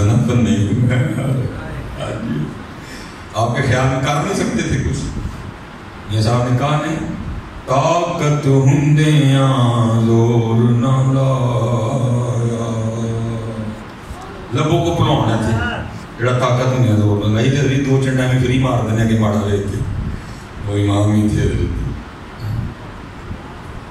بنے. آپ کے خیال میں کر نہیں سکتے تھے کچھ. یہ صاحب نے کہا نہیں, طاقت ہندیاں زور نہ لایا. لبوں کو پلاؤنا تھے جڑا طاقت ہندیاں زور نہ لائی. تے دو چنڈا میں فری مار دینے کے ماڑا رہے تھے. وہ امام ہی تھے.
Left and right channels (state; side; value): identical; both; correlation 1.00